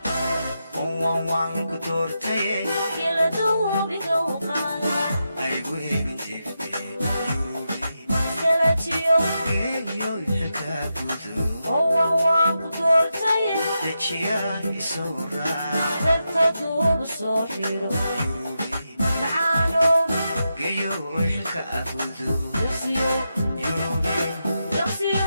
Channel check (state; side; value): inverted; both; correlation -0.87